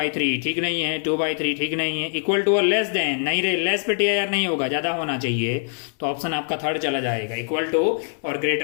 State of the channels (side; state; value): right; silent; 63 dB below the other